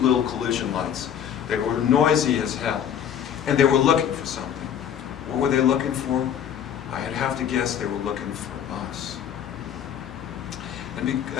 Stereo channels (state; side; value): quieter; right; 9.0 dB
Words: collision lights. They were noisy as hell, and they were looking for something. What were they looking for? I'd have to guess they were looking for us. And